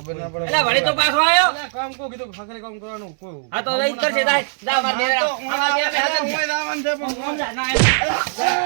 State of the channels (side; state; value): left; silent; digital silence